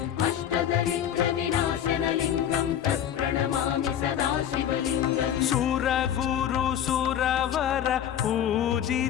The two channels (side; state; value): right; quieter; 9.8 dB